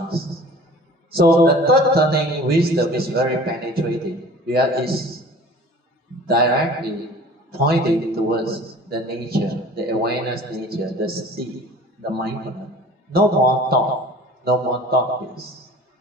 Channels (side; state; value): both; normal; correlation 0.44